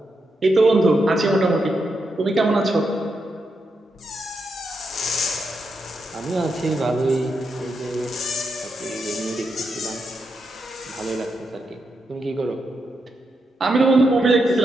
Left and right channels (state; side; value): normal; both; correlation 0.84